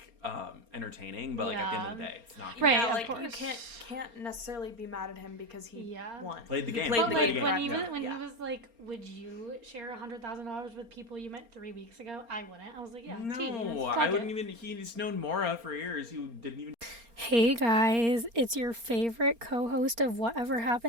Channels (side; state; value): left; late; 4.3 ms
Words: entertaining, but, like, at the end of the day, it's not. Right, yeah, like, you can't necessarily be mad at him because he won. Played the game. But, like, when he was like, would you share $100,000 with people you met 3 weeks ago? I wouldn't. I was like, yeah, no, I wouldn't even. He's known Maura for years. He didn't even. Hey guys, it's your favorite co-host of Whatever